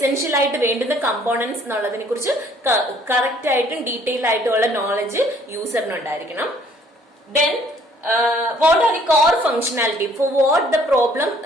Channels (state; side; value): normal; both; correlation 0.60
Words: ആയിട്ട് വേണ്ടുന്ന കമ്പോണൻസ് എന്നുള്ളതിനെ കുറിച്ച് കറക്റ്റ് ആയിട്ടും ഡീറ്റെയിൽ ആയിട്ടുള്ള നോളജ് യൂസറിന് ഉണ്ടായിരിക്കണം. Then what are the core functionality for what the problem